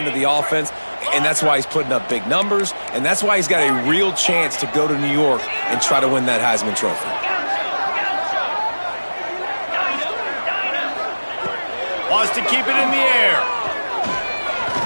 of the offense, and that's why he's putting up big numbers, and that's why he's got a real chance to go to New York and try to win that Heisman Trophy. Wants to keep it in the air.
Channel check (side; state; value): both; inverted; correlation -1.00